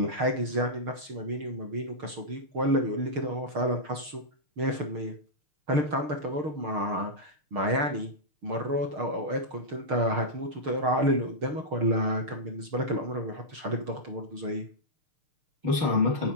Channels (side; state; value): left; late; 6.5 ms